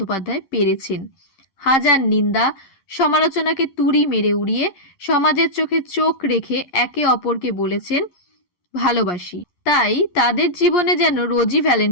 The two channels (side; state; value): right; late; 11 ms